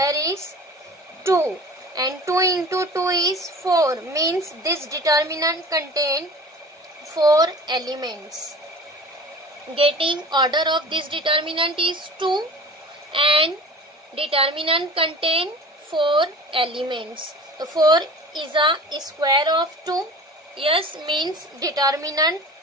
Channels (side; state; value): both; normal; correlation 0.40